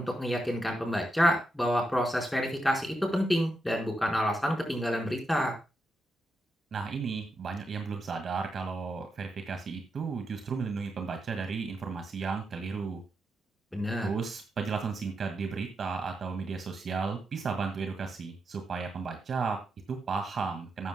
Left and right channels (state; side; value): normal; both; correlation 0.85